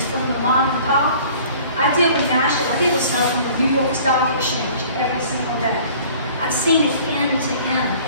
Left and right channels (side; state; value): both; inverted; correlation -0.50